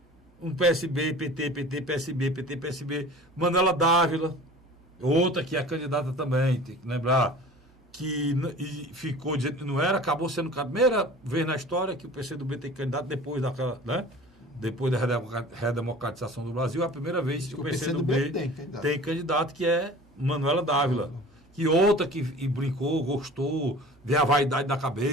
Um PSB, PT, PSB, PT, PSB. Manuela Dávila, outra que é candidata também, tem que lembrar. Que ficou dizendo que não era, acabou sendo a primeira vez na história que o PCdoB tem candidato depois daquela, né? Depois da redemocratização do Brasil, é a primeira vez que o PCdoB tem candidato, que é Manuela Dávila. Que outra que brincou, gostou, vê a vaidade da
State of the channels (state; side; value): normal; both; correlation 0.42